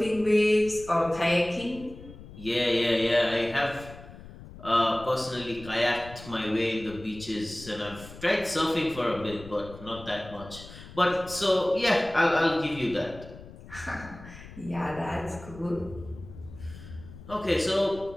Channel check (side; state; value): left; noise; rumble, 16 dB below the sound